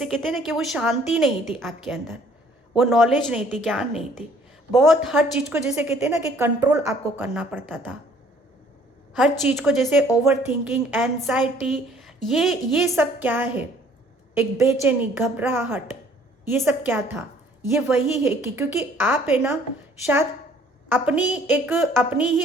कहते हैं ना कि वो शांति नहीं थी आपके अंदर, वो नॉलेज नहीं थी, ज्ञान नहीं थी, बहुत हर चीज़ को जैसे कहते हैं ना कि कंट्रोल आपको करना पड़ता था, हर चीज़ को जैसे ओवर थिंकिंग, एंजाइटी, ये सब क्या है, एक बेचैनी, घबराहट, ये सब क्या था, ये वही है कि क्योंकि आप है ना शायद अपनी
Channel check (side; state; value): both; normal; correlation 0.58